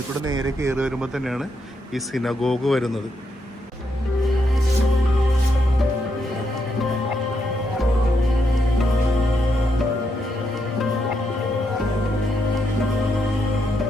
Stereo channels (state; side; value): normal; both; correlation 0.80